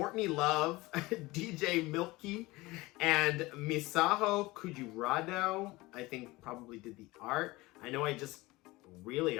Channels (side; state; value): right; quieter; 20.9 dB